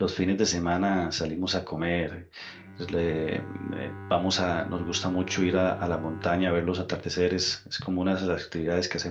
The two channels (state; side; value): identical; both; correlation 1.00